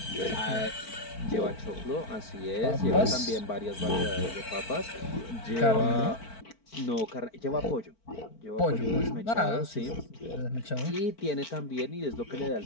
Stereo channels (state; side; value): late; right; 4.5 ms